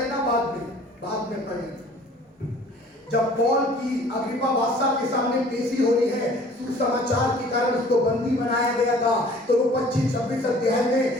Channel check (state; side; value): normal; both; correlation 0.51